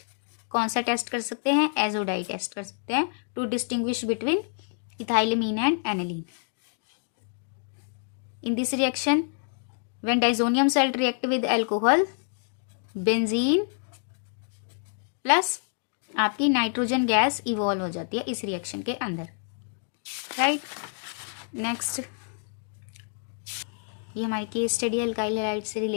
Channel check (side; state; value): right; silent; 60 dB below the other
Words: कौन सा test कर सकते हैं, azo dye test कर सकते हैं to distinguish between ethylamine and aniline. In this reaction, when disonium salt react with alcohol, benzene plus आपकी नाइट्रोजन गैस इवॉल्व हो जाती है इस रिएक्शन के अंदर, राइट। नेक्स्ट ये हमारी केस स्टडी अल्काइल हैलाइड से